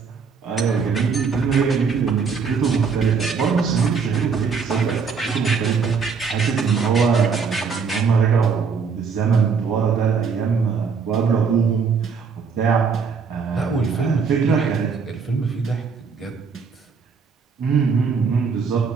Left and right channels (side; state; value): left; quieter; 5.7 dB